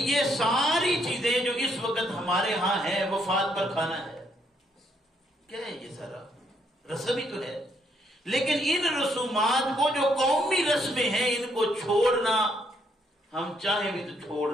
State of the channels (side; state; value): both; normal; correlation 0.72